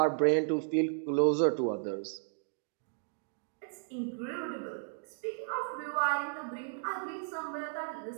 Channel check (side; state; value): left; silent; digital silence